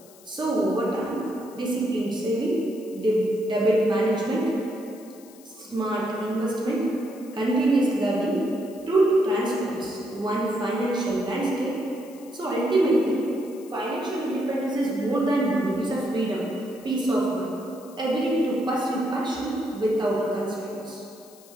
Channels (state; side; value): noise; left; hiss, 24 dB below the sound